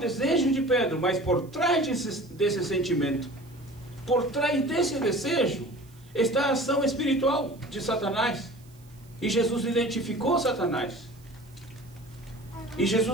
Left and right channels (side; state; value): right; noise; hiss, 29 dB below the sound